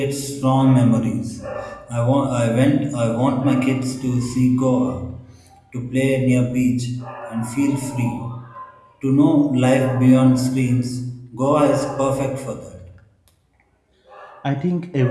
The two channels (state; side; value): identical; both; correlation 1.00